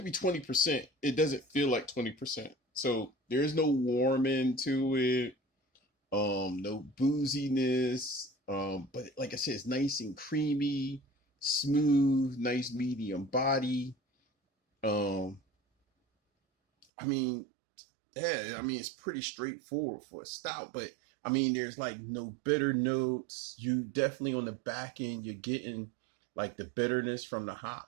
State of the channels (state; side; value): drops out; left; at 16.9 s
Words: be 20%. It doesn't feel like 20%. So there's no warming to it. No booziness. But like I said, it's nice and creamy, smooth, nice medium body. Um, I mean, yeah, I mean it's pretty straightforward for a stout, but I mean there's like no bitter notes. You definitely on the back end you're getting like the bitterness from the